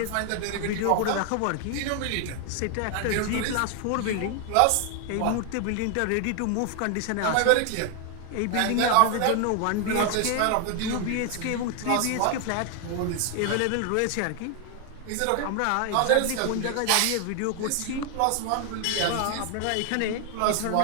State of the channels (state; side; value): different; both; correlation 0.00